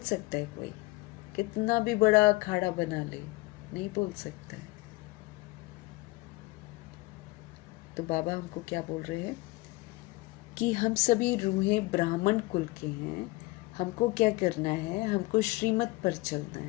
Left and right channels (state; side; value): quieter; right; 22.2 dB